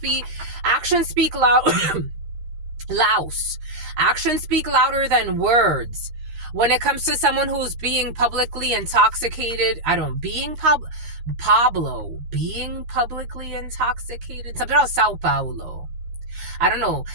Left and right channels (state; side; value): late; left; 13 ms